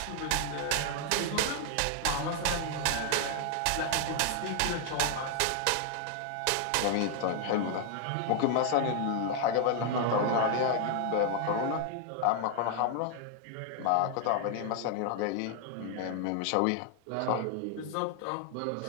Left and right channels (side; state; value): both; different; correlation 0.00